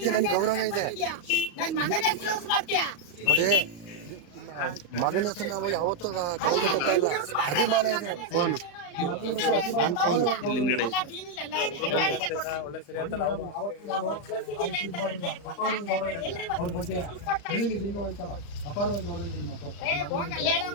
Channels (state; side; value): late; right; 35 ms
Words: ನನಗೆ ಗೌರವ ಇದೆ ನೋಡಿ. ಮಗನ ಹೆಸರು ನಾವು ಯಾವತ್ತೂ ಅಭಿಮಾನ ಇದೆ. ಫೋನ್ ಅಪಾರವಾದ ಗೌರವ ಇದೆ